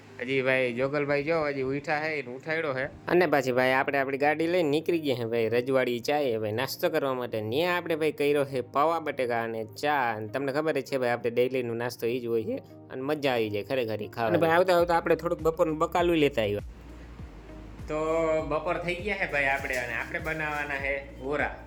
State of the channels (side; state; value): both; identical; correlation 1.00